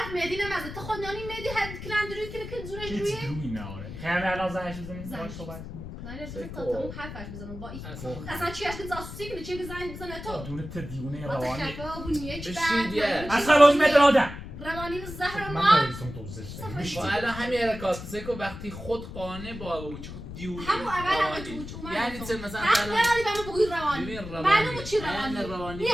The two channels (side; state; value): left; noise; rumble, 10 dB below the sound